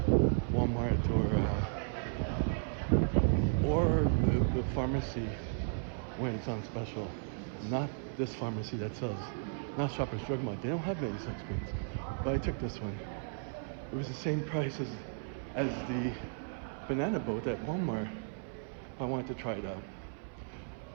Walmart or the pharmacy when it's on special. Not this pharmacy that sells, not Shoppers Drug Mart. They don't have many sunscreens, but I took this one. It was the same price as the banana boat at Walmart. I wanted to try it out.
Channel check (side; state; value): left; silent; 55 dB below the other